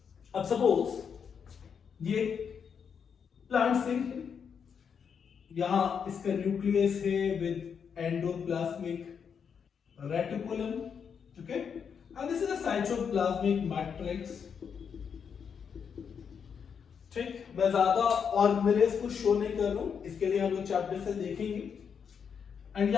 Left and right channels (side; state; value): right; quieter; 6.9 dB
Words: अब सपोज ये प्लांट सेल है, यहां इसका न्यूक्लियस है with endoplasmic reticulum, okay, and this is a cytoplasmic matrix। ठीक, मैं ज्यादा ऑर्गेनेल्स को शो नहीं कर रहा हूं, इसके लिए हम लोग चैप्टर से देखेंगे। एंड